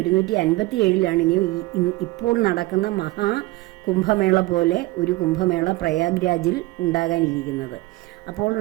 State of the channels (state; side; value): quieter; left; 20.2 dB